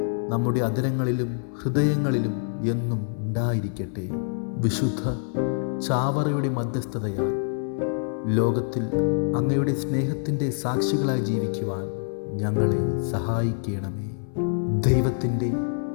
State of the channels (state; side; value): silent; right; 59 dB below the other